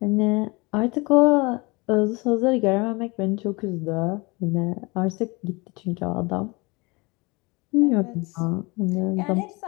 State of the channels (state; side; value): quieter; right; 26.2 dB